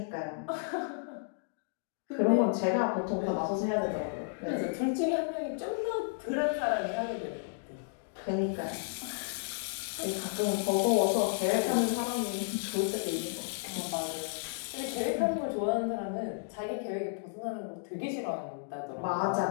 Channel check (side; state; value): right; silent; digital silence